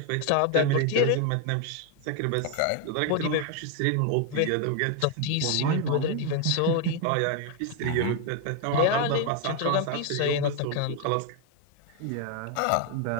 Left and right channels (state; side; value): different; both; correlation 0.01